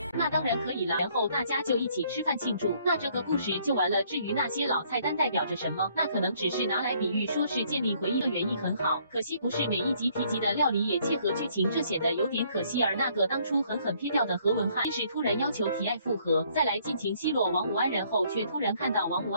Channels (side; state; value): both; inverted; correlation -0.65